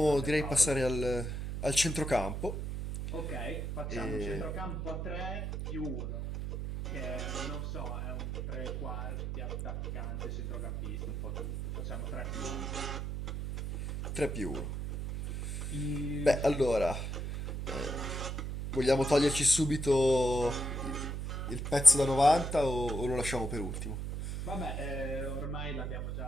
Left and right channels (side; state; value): right; noise; hum, 4 dB below the sound